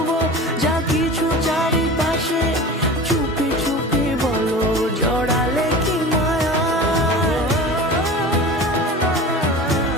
যা কিছু চারিপাশে, চুপি চুপি বলো জড়ালে কি মায়া।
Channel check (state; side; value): normal; both; correlation 0.34